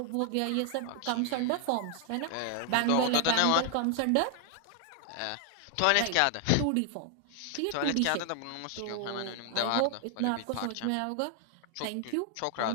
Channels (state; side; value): different; both; correlation 0.00